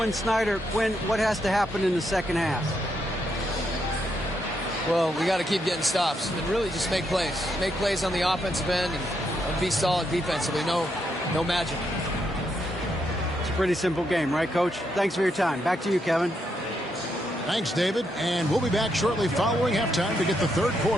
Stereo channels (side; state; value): both; normal; correlation 0.79